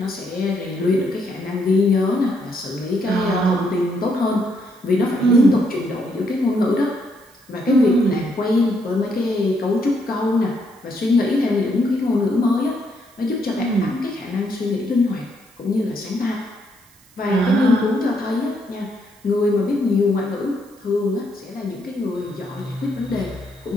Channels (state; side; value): noise; right; hiss, 29 dB below the sound